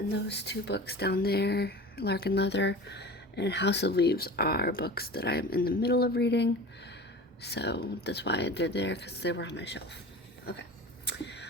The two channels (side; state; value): both; normal; correlation 0.36